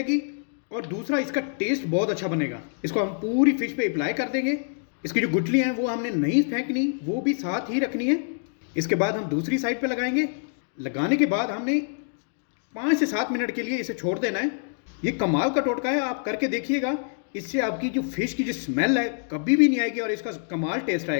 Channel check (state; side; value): silent; right; 61 dB below the other